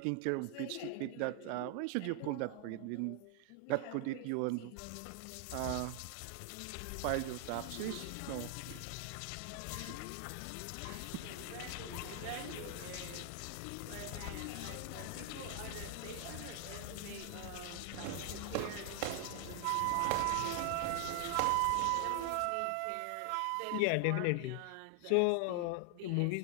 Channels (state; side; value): different; both; correlation 0.00